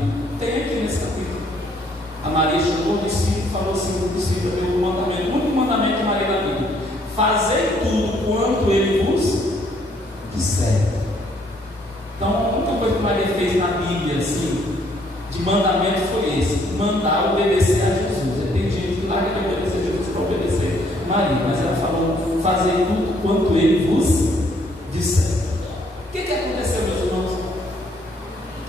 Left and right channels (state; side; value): noise; left; hum, 27 dB below the sound